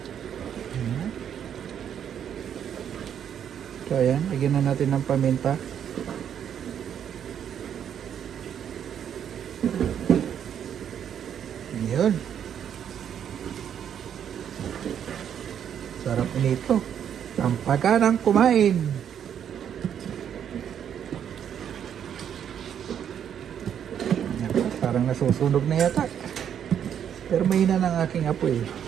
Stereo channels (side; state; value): left; quieter; 9.0 dB